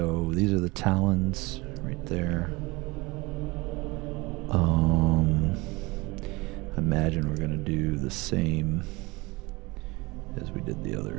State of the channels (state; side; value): quieter; left; 24.0 dB